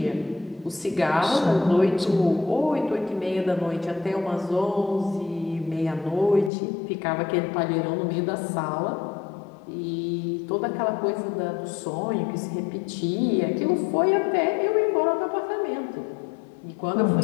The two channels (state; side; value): drops out; right; at 6.5 s